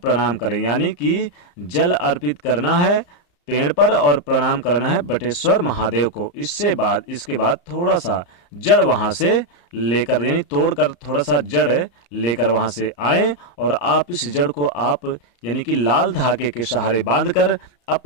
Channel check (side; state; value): right; late; 34 ms